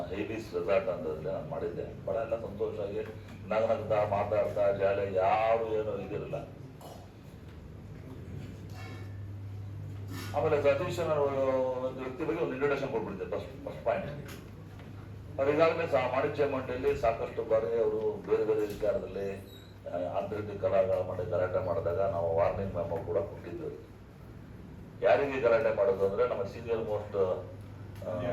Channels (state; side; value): identical; both; correlation 1.00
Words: ಹೇಬೀಸ್ ರೆಸಾರ್ಟ್ ಅಂತಂದ್ರೆ ನಾನು ಮಾಡಿದ್ದೆ. ಬಹಳ ಎಲ್ಲ ಸಂತೋಷವಾಗಿ ನಗನಗ್ತಾ ಮಾತಾಡ್ತಾ ಜಾಲಿ, ಯಾರು ಏನೋ ಇದಿರಲಿಲ್ಲ. ಆಮೇಲೆ ಸತೀಶ್ ಒಂದು ವ್ಯಕ್ತಿ ಬಗ್ಗೆ ಒಂದು ಇಂಟ್ರೊಡಕ್ಷನ್ ಕೊಟ್ಬಿಟ್ಟಿದ್ದೆ. ಫಸ್ಟ್ ಪಾಯಿಂಟ್, ಅವ್ರು ಈಗಾಗಲೇ ವಾಣಿಜ್ಯ ಮಂಡಳಿಯಲ್ಲಿ ಸಾಕಷ್ಟು ಬಾರಿ ಅವರು ಬೇರೆ ಬೇರೆ ವಿಚಾರದಲ್ಲಿ ಆಂತರಿಕ ಕಲಾಗಳ ಮಾಡಿ ಗಲಾಟೆ ಮಾಡಿದಾಗ ನಾವು ವಾರ್ನಿಂಗ್ ಮೆಮೊ ಕೂಡ ಕೊಟ್ಟಿದ್ವಿ. ಯಾರಿಗೆ ಗಲಾಟೆ ಮಾಡೋದು ಅಂದರೆ ನಮ್ಮ ಸೀನಿಯರ್ ಮೋಸ್ಟ್